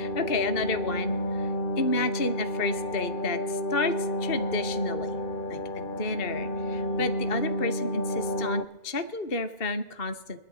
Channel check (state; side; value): late; right; 2.0 ms